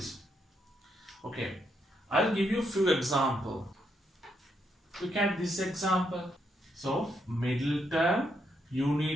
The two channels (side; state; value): both; normal; correlation 0.78